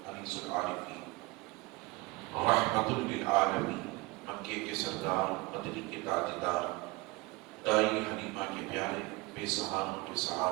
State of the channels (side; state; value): left; quieter; 23.3 dB